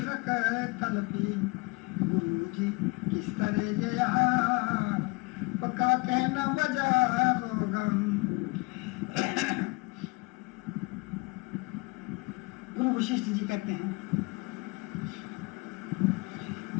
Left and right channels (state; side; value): quieter; right; 26.5 dB